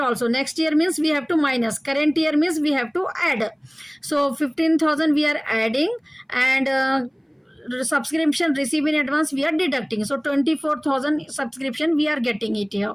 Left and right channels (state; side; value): identical; both; correlation 1.00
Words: also. Next year means we have to minus, current year means we have to add. So 15,000 we are adding, and subscription received in advance we are deducting. So 24,000 subscription we are getting it